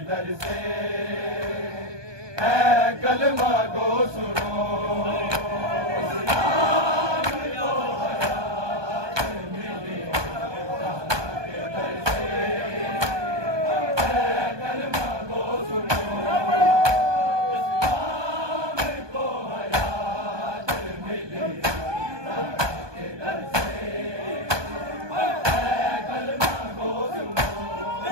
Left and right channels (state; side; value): late; left; 1.2 ms